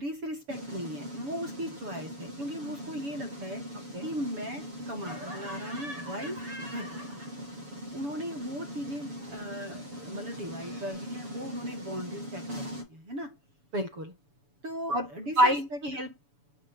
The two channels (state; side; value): late; left; 7.0 ms